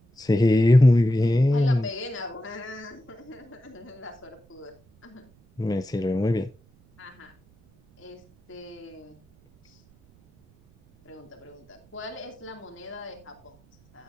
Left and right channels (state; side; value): noise; right; rumble, 30 dB below the sound